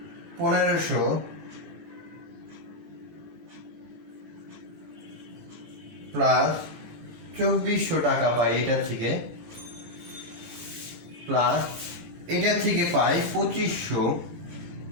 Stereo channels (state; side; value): late; left; 17 ms